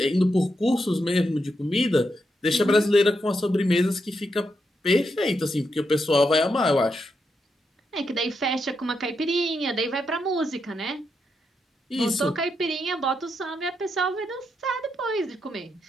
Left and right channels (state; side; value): normal; both; correlation 0.83